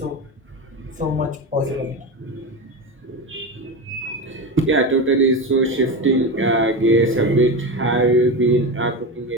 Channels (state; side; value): normal; both; correlation 0.20